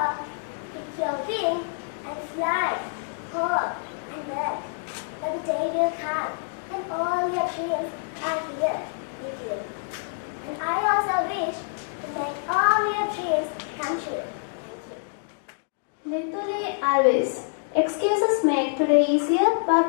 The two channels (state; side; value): silent; right; digital silence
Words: pick your wing and fly, hope and work. But the day will come and all your dreams are here with you. And I also wish to make all your dreams come true. Nituli always. Excuses make today easier